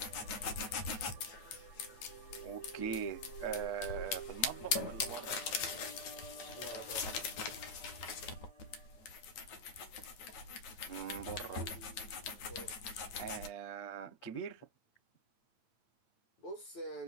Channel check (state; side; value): late; right; 9.2 ms